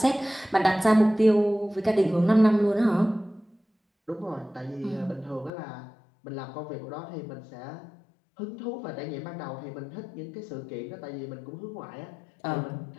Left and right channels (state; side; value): drops out; right; at 5.5 s